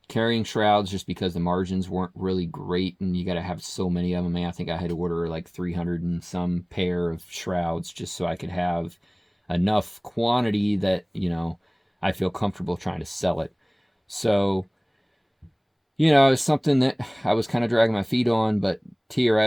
carrying shrouds just because the margins weren't really great, and you got to have so many of them. I think I had to order like 300 and some pair of shrouds just so I could have enough quantity that, you know, I feel comfortable trying to sell it. So, you know, it's something that I was kind of dragging my feet on, but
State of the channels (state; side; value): identical; both; correlation 1.00